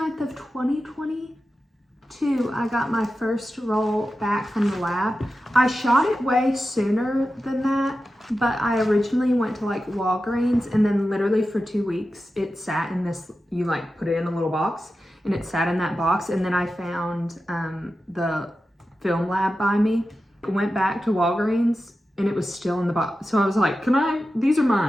of 2022, I got my first roll back from the lab. I shot it way sooner than that, but I originally went to like Walgreens and then literally for 2 weeks, it sat in this, you like put it in a little box and it sat in that box. And then I found the film lab by me. Went back to Walgreens and it was still in the box. So I was like, these are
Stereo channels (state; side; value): normal; both; correlation 0.92